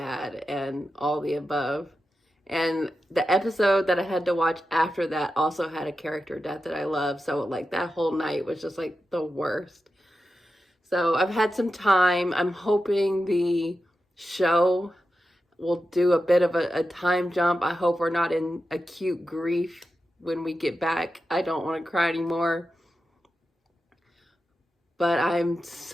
and all the above. And the episode that I had to watch after that also had a character death that I love. So like that whole night was just like the worst. So I've had some time. I'm hoping the show we'll do a bit of a time jump. I hope we're not in acute grief when we get back. I don't want to cry anymore. But I'm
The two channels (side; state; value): both; normal; correlation 0.90